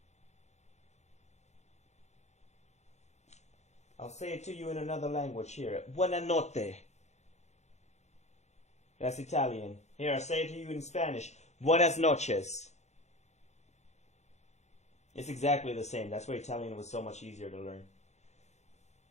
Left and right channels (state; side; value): late; right; 0.33 ms